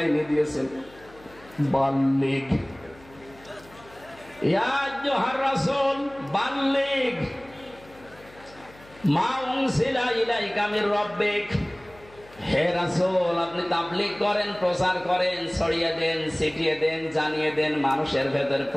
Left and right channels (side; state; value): left; noise; hum, 24 dB below the sound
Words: দিয়েছেন বাল্লিগ। ইয়া আইয়ুহার রাসূল বাল্লিগ মা উনসিলা ইলাইকা মির রাব্বিক। হে রাসূল আপনি তাবলীগ করেন, প্রচার করেন, ছড়িয়ে দেন, ছিটিয়ে দেন, জানিয়ে দেন, মানুষের ভেতরে